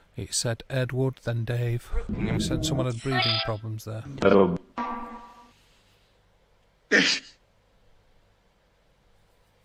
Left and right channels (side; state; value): both; identical; correlation 1.00